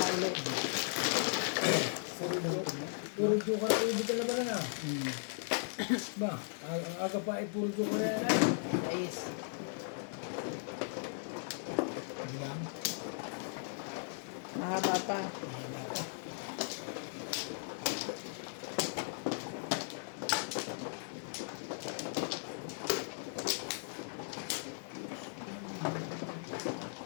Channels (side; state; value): right; silent; digital silence